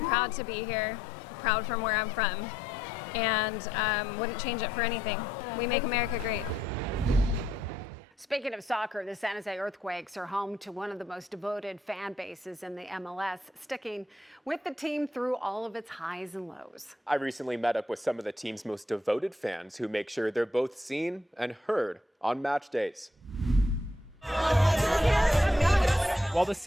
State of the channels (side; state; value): both; normal; correlation 0.74